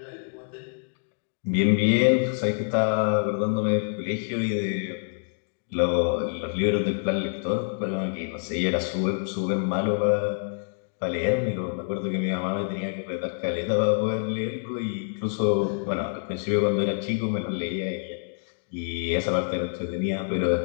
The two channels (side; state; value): right; silent; digital silence